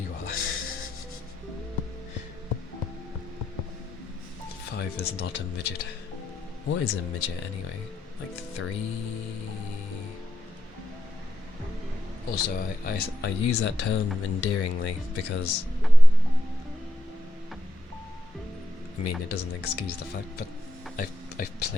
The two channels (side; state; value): both; normal; correlation 0.84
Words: are. 5 is not a midget. What is a midget anyway? Like 3? Also, I use that term endearingly because, I mean, it doesn't excuse the fact, but I've